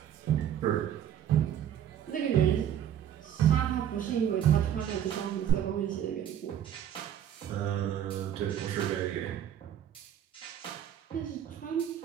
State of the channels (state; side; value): quieter; left; 10.1 dB